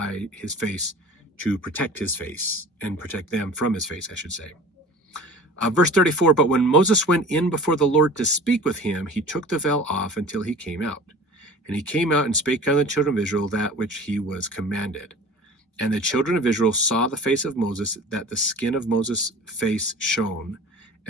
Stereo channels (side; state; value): both; normal; correlation 0.42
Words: face to protect his face and protect them from his face, I should say. Verse 34, but when Moses went in before the Lord to speak with him, he took the veil off until he came out. And he came out and spake unto the children of Israel that which he was commanded. And the children of Israel saw the face of Moses, that the skin of Moses' face shone.